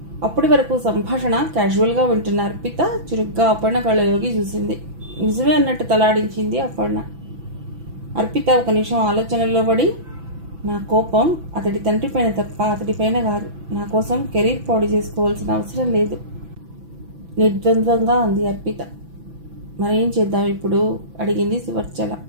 అప్పటి వరకు సంభాషణ క్యాజువల్గా వింటున్న అర్పిత చురుగ్గా అపర్ణ కళ్ళలోకి చూసింది. నిజమే అన్నట్టు తలాడించింది అపర్ణ. అర్పిత ఒక నిమిషం ఆలోచనల్లో పడి, నా కోపం అతడి తండ్రి పైన తప్ప అతడిపైన కాదు, నా కోసం కెరీర్ పాడు చేసుకోవాల్సిన అవసరం లేదు, నిర్ద్వంద్వంగా అంది అర్పిత. మరేం చేద్దాం ఇప్పుడు, అడిగింది సువర్చల.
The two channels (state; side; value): late; left; 6.0 ms